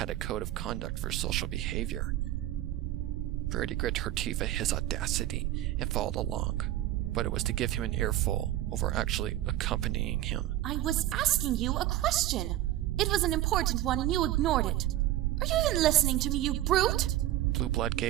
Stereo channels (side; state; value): left; quieter; 14.3 dB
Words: a code of conduct for social behavior. Rarity grit her teeth at his audacity and followed along, but it was to give him an earful over actually accompanying him. I was asking you a question. It was an important one and you ignored it. Are you even listening to me, you brute? Blueblood